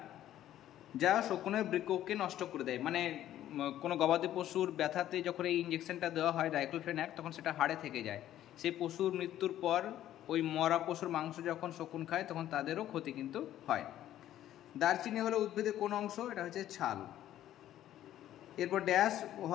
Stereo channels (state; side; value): quieter; right; 12.4 dB